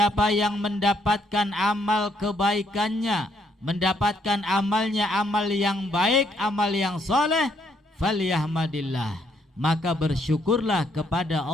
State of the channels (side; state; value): both; normal; correlation 0.71